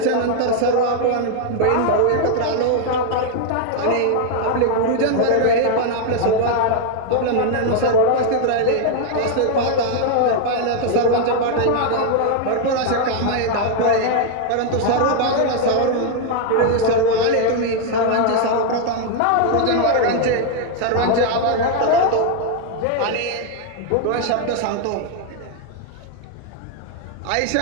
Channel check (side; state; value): both; different; correlation 0.00